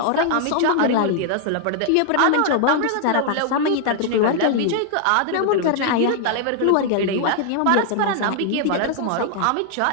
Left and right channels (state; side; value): different; both; correlation 0.00